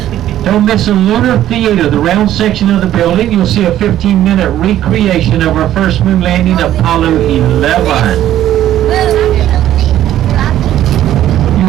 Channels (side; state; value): left; quieter; 12.4 dB